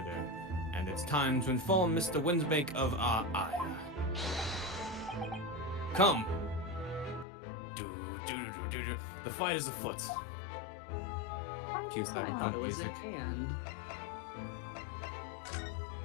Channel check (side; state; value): right; drops out; at 7.2 s